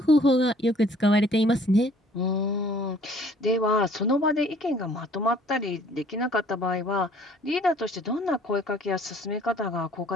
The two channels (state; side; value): normal; both; correlation 0.56